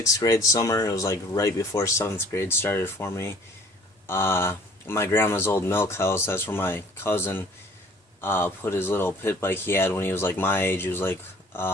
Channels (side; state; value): both; normal; correlation 0.53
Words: grade summer. It was like right before 7th grade started for me. My grandma's old milk house, that's where my cousin put his little pit bike he had when he was like my age. He was like,